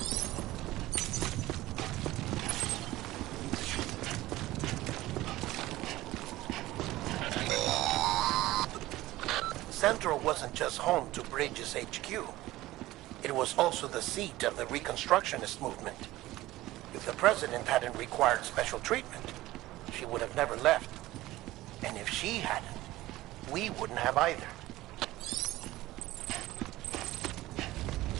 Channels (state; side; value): quieter; left; 17.1 dB